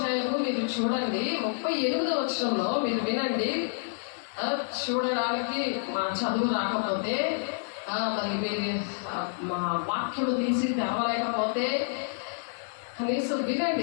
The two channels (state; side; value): silent; right; digital silence